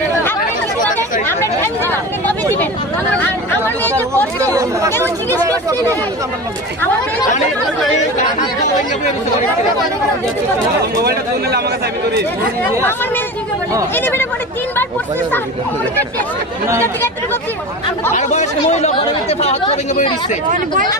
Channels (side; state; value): both; normal; correlation 0.30